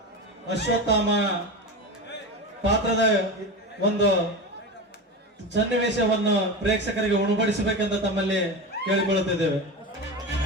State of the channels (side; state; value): both; normal; correlation 0.24